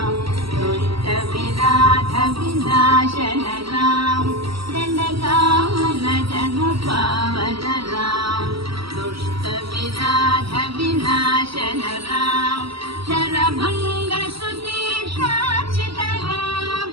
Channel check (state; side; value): late; left; 0.75 ms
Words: दुष्ट विनाथ विनाशन राम, दंडकावन जन पावन राम, दुष्ट विनाथ विनाशन राम, शरभंग सुतीक्षाचित राम,